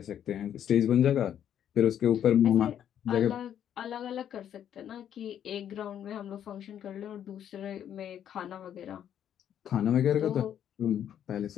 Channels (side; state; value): right; quieter; 9.8 dB